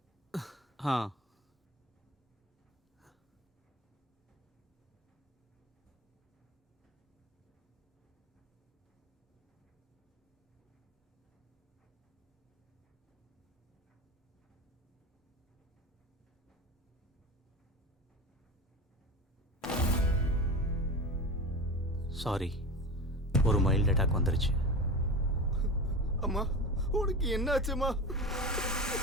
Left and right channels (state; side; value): normal; both; correlation 0.29